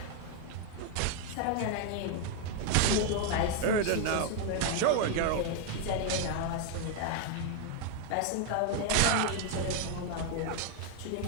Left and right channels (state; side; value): different; both; correlation 0.01